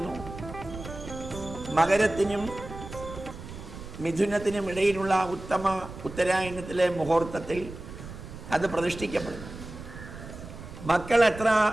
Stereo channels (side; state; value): right; noise; rumble, 12 dB below the sound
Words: മകരത്തിനും മിഥുനത്തിനും ഇടയിലുള്ള ഉത്തമ ഉത്തരായണത്തിലെ മുഹൂർത്തത്തിൽ അത് പ്രതിഷ്ഠിക്കപ്പെടുന്നു. മക്കൾ എത്ര